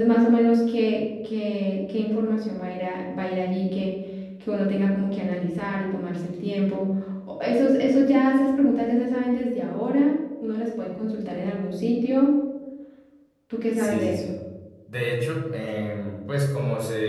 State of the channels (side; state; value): both; identical; correlation 1.00